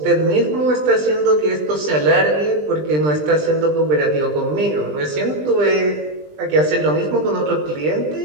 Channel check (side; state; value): left; late; 20 ms